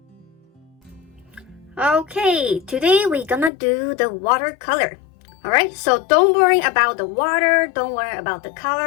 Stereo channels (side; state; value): right; drops out; at 3.5 s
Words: Okay, today we're gonna do the watercolor. Alright, so don't worry about the water, don't worry about the